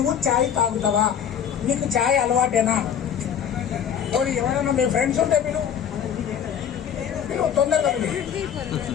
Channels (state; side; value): quieter; right; 8.6 dB